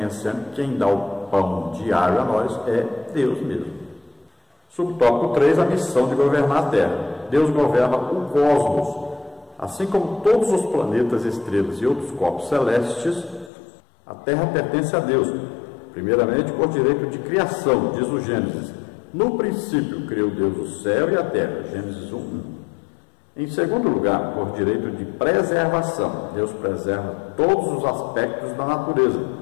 que quem dá o pão diário a nós é Deus mesmo. Subtópico 3, a missão de governar a Terra. Deus governa o cosmos, assim como todos os planetas, estrelas e outros corpos celestes. A Terra pertence a Deus, primeiramente por direito de criação, diz o Gênesis. No princípio criou Deus o céu e a terra, Gênesis 1:1. Em segundo lugar, por direito de preservação, Deus preserva todos os aspectos da natureza.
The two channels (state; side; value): drops out; right; at 13.5 s